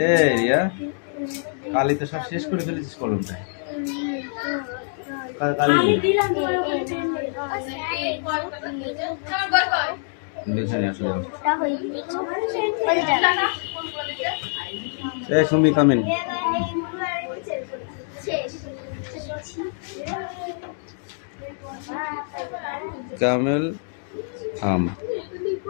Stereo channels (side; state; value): right; silent; 62 dB below the other